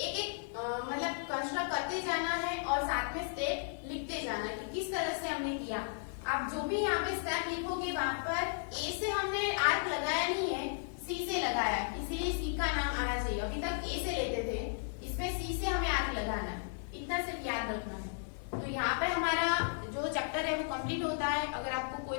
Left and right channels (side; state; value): right; silent; digital silence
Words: एक मतलब कंस्ट्रक्ट करते जाना है और साथ में स्टेप लिखते जाना है कि किस तरह से हमने किया। आप जो भी यहाँ पे स्टेप लिखोगे वहां पर ए से हमने आर्क लगाया नहीं है, सी से लगाया, इसीलिए सी का नाम आना चाहिए। अभी तक ए से लेते थे, इसमें सी से हमें आर्क लगाना है, इतना सिर्फ याद रखना है। तो यहाँ पे हमारा जो चैप्टर है वो कंप्लीट होता है। अगर आपको कोई